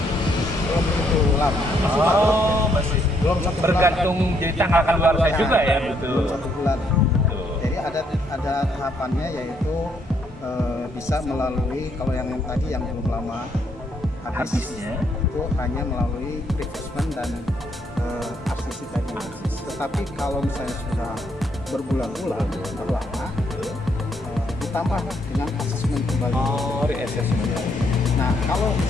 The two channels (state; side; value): normal; both; correlation 0.72